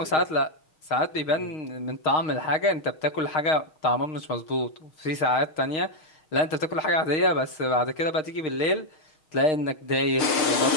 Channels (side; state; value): right; late; 6.4 ms